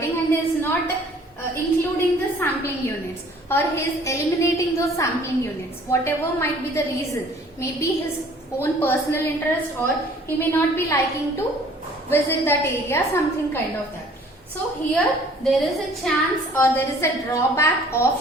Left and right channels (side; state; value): both; normal; correlation 0.54